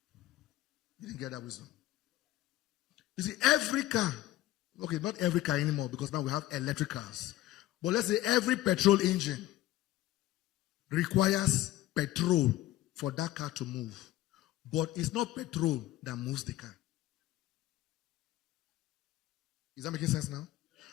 You didn't get that wisdom. You see, every car, okay, not every car anymore because now we have electric cars. But let's say every petrol engine requires petrol for that car to move. But it's not petrol that moves the car. Is that making sense now?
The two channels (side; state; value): right; quieter; 15.0 dB